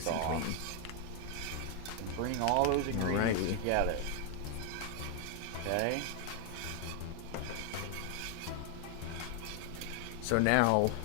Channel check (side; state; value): both; different; correlation 0.01